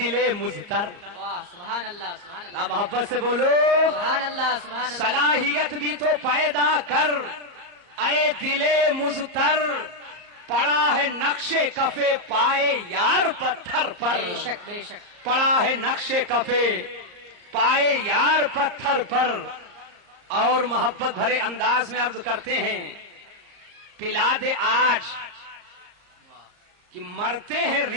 مزتر. واہ سبحان اللہ سبحان اللہ. محبت سے بولو، سبحان اللہ سبحان اللہ. صلاحیت بھی تو پیدا کر اے دل مزتر، پڑا ہے نقش کفے پائے یار پتھر پر. بے شک بے شک. پڑا ہے نقش کفے پائے یار پتھر پر. اور محبت بھرے انداز میں عرض کرتے ہیں، پلا دے آج کہ مرتے ہیں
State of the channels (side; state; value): left; late; 34 ms